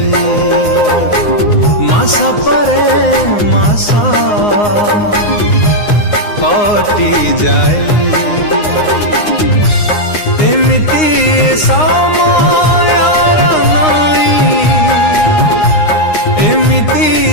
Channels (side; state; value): right; late; 9.7 ms